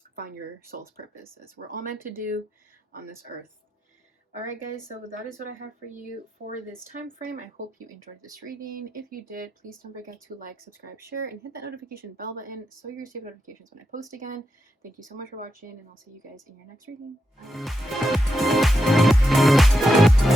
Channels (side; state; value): both; normal; correlation 0.85